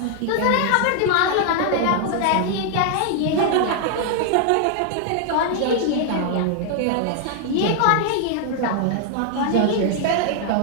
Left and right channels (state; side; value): different; both; correlation 0.00